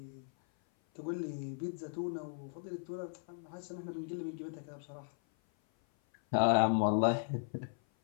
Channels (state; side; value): silent; right; 53 dB below the other